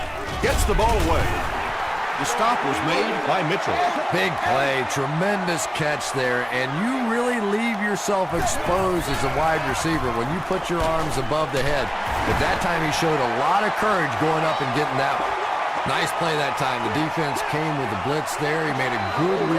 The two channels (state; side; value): identical; both; correlation 1.00